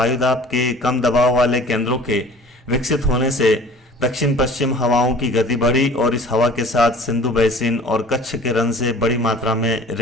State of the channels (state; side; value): normal; both; correlation 0.46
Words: के कम दबाव वाले केंद्रों के विकसित होने से दक्षिण पश्चिम हवाओं की गति बढ़ी और इस हवा के साथ सिंधु बेसिन और कच्छ के रन से बड़ी मात्रा में